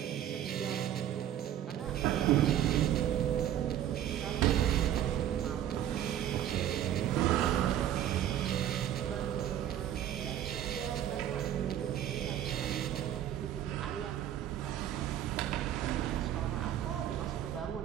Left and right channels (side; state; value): left; quieter; 11.2 dB